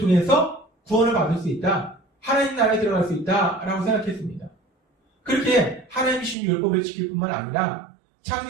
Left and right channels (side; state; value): left; drops out; at 6.4 s